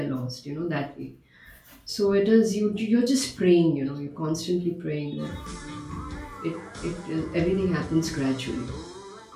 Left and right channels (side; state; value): both; identical; correlation 1.00